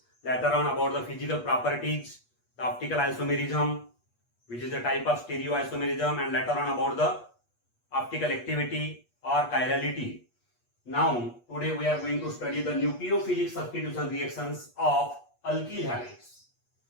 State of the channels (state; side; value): late; right; 8.3 ms